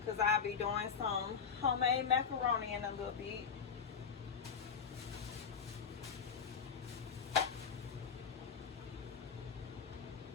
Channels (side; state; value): right; quieter; 6.3 dB